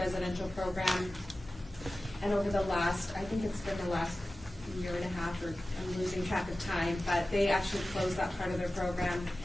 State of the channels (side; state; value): both; normal; correlation 0.96